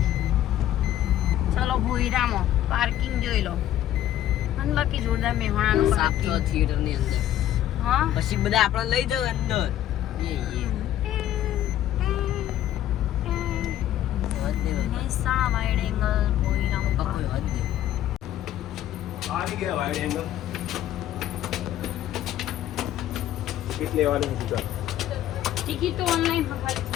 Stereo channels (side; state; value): right; quieter; 12.4 dB